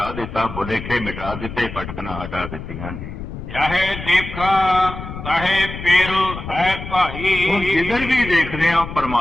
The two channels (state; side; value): noise; left; rumble, 9 dB below the sound